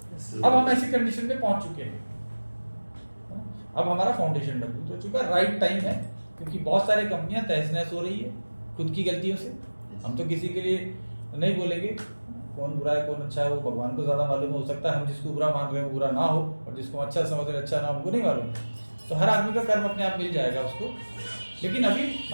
अब हम ऐसी कंडीशन में पहुंच चुके हैं, अब हमारा फाउंडेशन मजबूत हो चुका है। राइट टाइम है, क्योंकि बहुत सारी कंपनियां तहस नहस हो रही है खुद की गलतियों से। हम तो किसी के लिए नहीं बोलेंगे कौन बुरा है कौन अच्छा है, वो भगवान को ज्यादा मालूम। हो सकता है हम जिसको बुरा मान रहे हैं वो बुरा ना हो, और जिसको अच्छा समझ रहे अच्छा ना हो, हमको नहीं मालूम। तो हर आदमी का कर्म अपने आप मिल जाएगा उसको। लेकिन अभी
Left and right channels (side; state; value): both; inverted; correlation -1.00